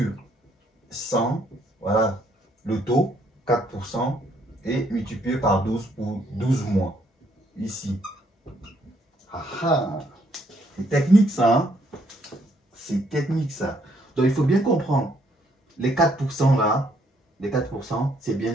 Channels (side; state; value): both; normal; correlation 0.69